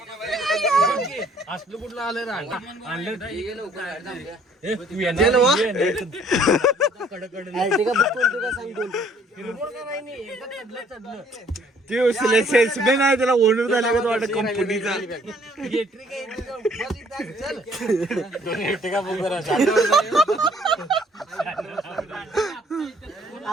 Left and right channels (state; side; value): normal; both; correlation 0.61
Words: असलं कुठलं आलं सेल्समॅन आहे त्याला ओनर झाला का वाटत कंपनीचा